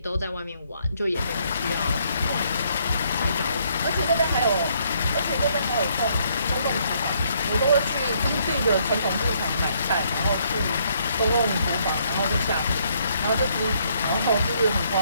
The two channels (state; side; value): inverted; both; correlation -0.70